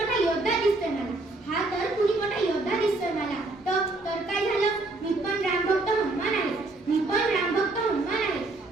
योद्धा दिसतोय मला. तर काय झालं, मी पण रामभक्त हनुमान आहे.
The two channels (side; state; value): left; quieter; 3.0 dB